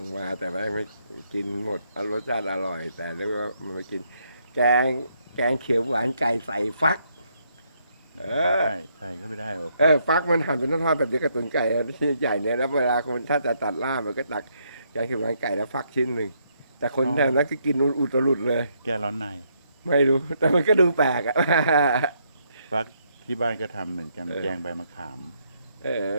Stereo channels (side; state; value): both; inverted; correlation -0.74